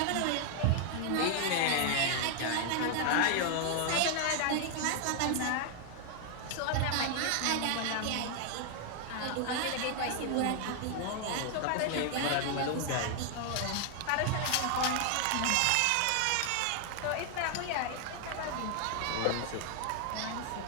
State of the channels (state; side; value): different; both; correlation 0.00